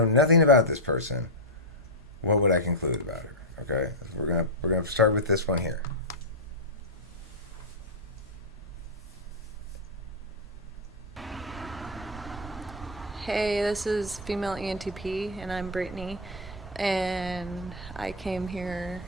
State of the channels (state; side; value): normal; both; correlation -0.01